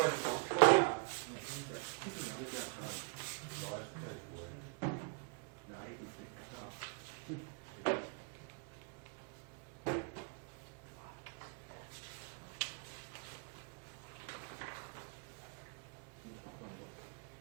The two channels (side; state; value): left; quieter; 36.5 dB